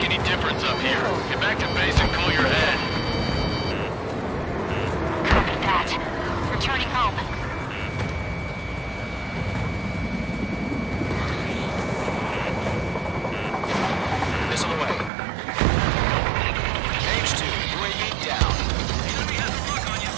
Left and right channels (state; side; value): drops out; left; at 15.1 s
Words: any difference up here. Get back to base and cool your head. Copy that. Returning home. Missile away. Mage 2, UAV down. Enemy has a lock on you.